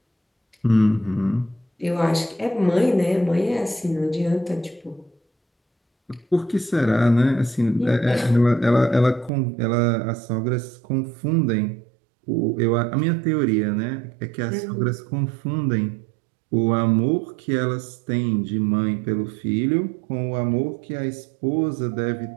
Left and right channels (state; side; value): drops out; left; at 9.3 s